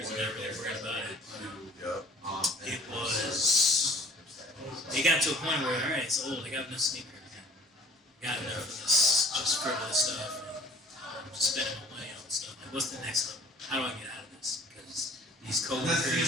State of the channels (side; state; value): both; normal; correlation 0.53